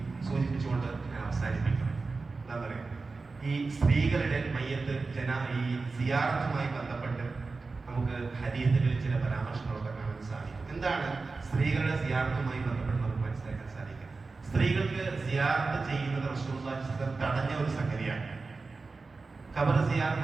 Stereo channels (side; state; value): left; quieter; 4.0 dB